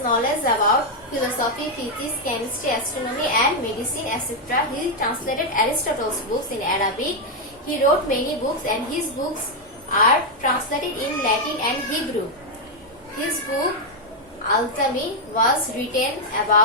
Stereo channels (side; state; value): both; normal; correlation 0.01